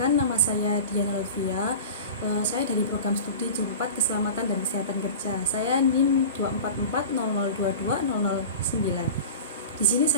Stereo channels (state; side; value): inverted; both; correlation -0.34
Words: nama saya Diana Levia. Saya dari program studi J4 Keselamatan dan Kesehatan Kerja. Saya NIM 24400220009. Di sini